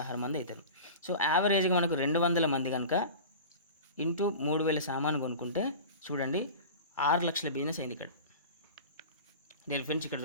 మంది అవుతారు. సో యావరేజ్గా మనకు 200 మంది కనుక ఇంటూ 3,000 సామాను కొనుక్కుంటే చూడండి 6 లక్షల బిజినెస్ అయింది ఇక్కడ. నేను ఫ్రెండ్స్ ఇక్కడ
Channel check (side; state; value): both; inverted; correlation -0.35